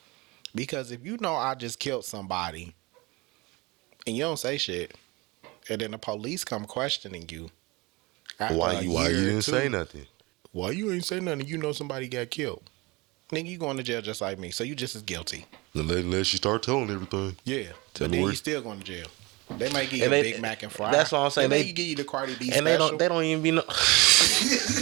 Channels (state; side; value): quieter; left; 24.4 dB